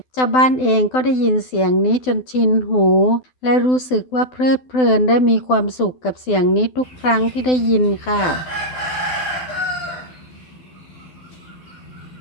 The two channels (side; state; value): right; late; 12 ms